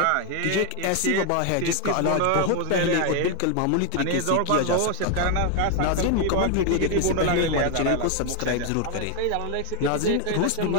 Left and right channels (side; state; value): both; different; correlation 0.01